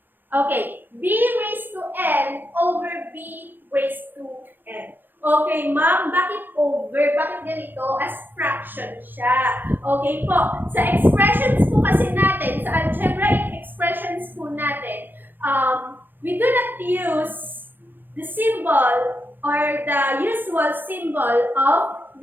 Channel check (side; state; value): left; late; 0.092 ms